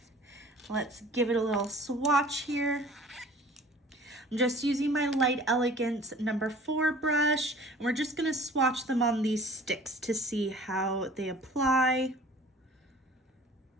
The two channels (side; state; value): both; normal; correlation 0.47